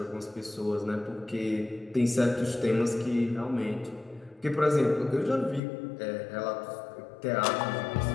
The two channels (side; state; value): right; drops out; at 5.6 s